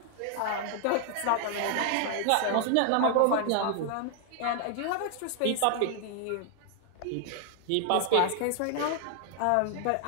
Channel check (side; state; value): both; different; correlation 0.00